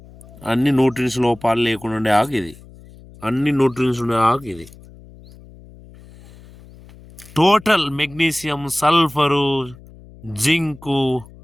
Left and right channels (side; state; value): left; noise; hum, 21 dB below the sound